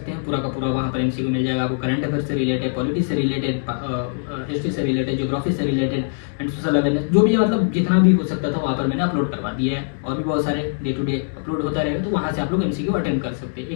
हैं पूरा का पूरा। वहाँ पर एमसीक्यू मिल जाएगा आपको, करंट अफेयर से रिलेटेड, पॉलिटिक्स से रिलेटेड, हिस्ट्री से रिलेटेड, ज्योग्राफी से रिलेटेड एंड सोशल अवेयरनेस, जो भी है मतलब जितना भी हो सकता था वहाँ पर मैंने अपलोड करवा दिया है। और भी बहुत सारे डे टू डे अपलोड होता रहेगा, तो वहाँ से आप लोग एमसीक्यू अटेंड कर सकते हैं।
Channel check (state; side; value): silent; right; 64 dB below the other